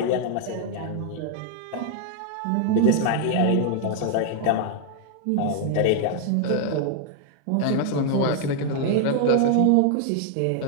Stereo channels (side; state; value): both; different; correlation 0.00